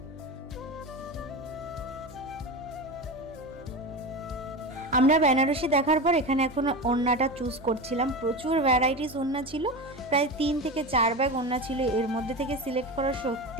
আমরা বেনারসি দেখার পর এখানে এখন ওড়নাটা চুজ করছিলাম। প্রচুর ভ্যারাইটিস ওড়না ছিল, প্রায় 3 থেকে 4 ব্যাগ ওড়না ছিল। এর মধ্যে থেকে সিলেক্ট করা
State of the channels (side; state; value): right; noise; hum, 21 dB below the sound